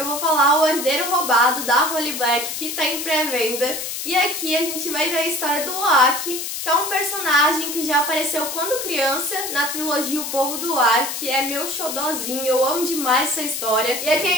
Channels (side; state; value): left; noise; hiss, 5 dB below the sound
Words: vou falar O Herdeiro Roubado, da Holly Black, que tá em pré-venda. E aqui a gente vai ver a história do Oak, que é um personagem que já apareceu quando criança na trilogia O Povo do Ar, que é meu xodózinho, eu amo demais essa história. E aqui a